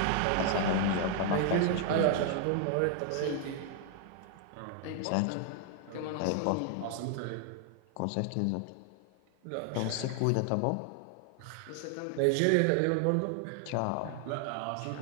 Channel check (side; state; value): both; different; correlation 0.00